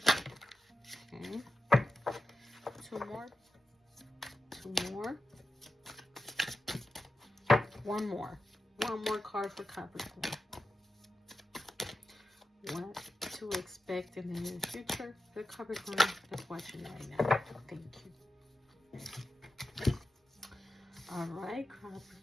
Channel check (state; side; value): normal; both; correlation 0.90